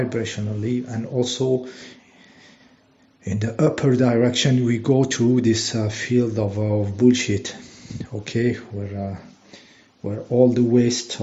and also in the upper direction we go through this field of bullshit. Okay, where all the waste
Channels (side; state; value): both; identical; correlation 1.00